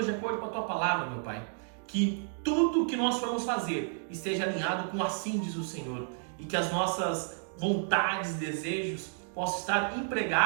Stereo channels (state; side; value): silent; left; digital silence